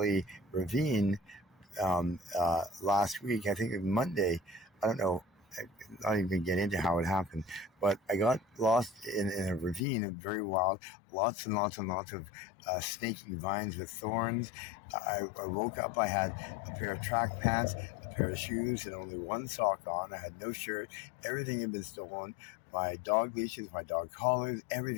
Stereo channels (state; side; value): drops out; right; at 9.8 s